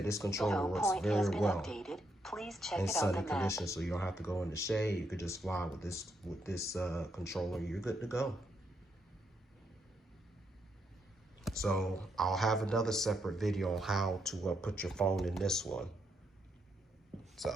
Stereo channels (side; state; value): both; normal; correlation 0.78